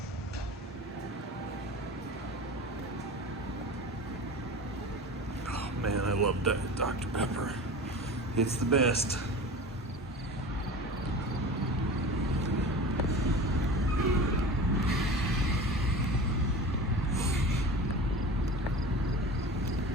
Man, I love that Dr. Pepper. It's the best.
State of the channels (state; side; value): normal; both; correlation 0.34